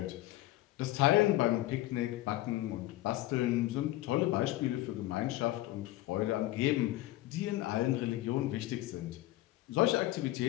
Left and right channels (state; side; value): quieter; right; 16.2 dB